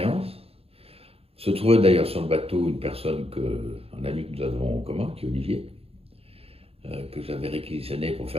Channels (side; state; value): left; late; 0.28 ms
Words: Se trouvait d'ailleurs sur le bateau un ami que nous avons en commun, qui est Olivier, que j'avais réquisitionné pour